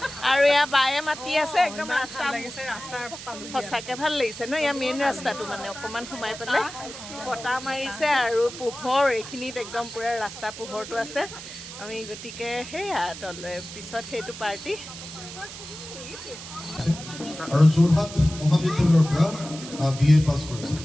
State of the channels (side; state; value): right; noise; hiss, 12 dB below the sound